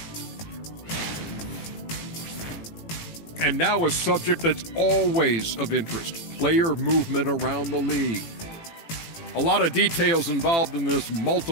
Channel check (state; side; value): late; right; 18 ms